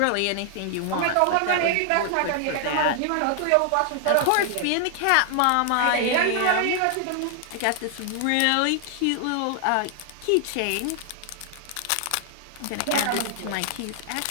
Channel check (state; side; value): different; both; correlation 0.00